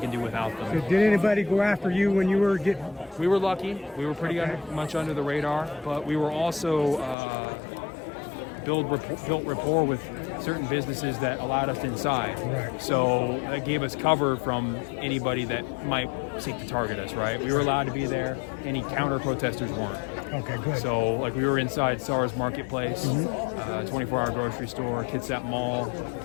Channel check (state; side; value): drops out; right; at 7.2 s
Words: do without them. Did anybody go after you when you were getting? We were lucky. We were pretty much under the radar, but we were also built rapport with certain businesses that allowed us inside. Right. So that gave us cover from anybody that might seek to target us, right? We were allowed to be there. Any counter protesters weren't. Okay, good. So, like, we were inside SARS Marketplace, 24-hour grocery store, Kitsap Mall,